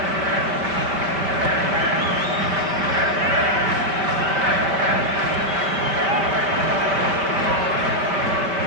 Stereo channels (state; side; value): late; left; 5.1 ms